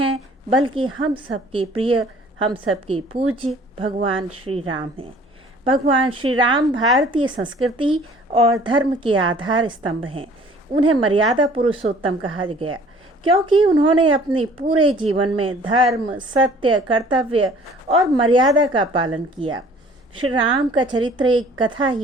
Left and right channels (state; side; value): normal; both; correlation 0.53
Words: बल्कि हम सबके प्रिय, हम सबके पूज्य भगवान श्री राम हैं। भगवान श्री राम भारतीय संस्कृति और धर्म के आधार स्तंभ हैं। उन्हें मर्यादा पुरुषोत्तम कहा गया क्योंकि उन्होंने अपने पूरे जीवन में धर्म, सत्य, कर्तव्य और मर्यादा का पालन किया। श्री राम का चरित्र एक कथा